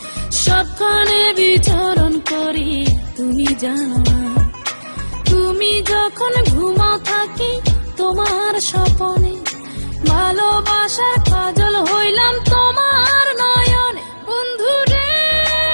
সবখানে বিচরণ করি তুমি জানো না। তুমি যখন ঘুমাও থাকি তোমার স্বপনে, ভালোবাসার কাজল হইলাম তোমার নয়নে। বন্ধু রে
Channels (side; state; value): both; inverted; correlation -1.00